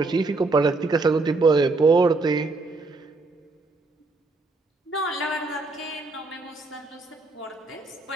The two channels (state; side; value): quieter; left; 3.4 dB